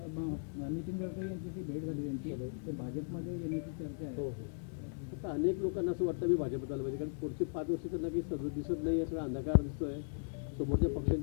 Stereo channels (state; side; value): silent; right; digital silence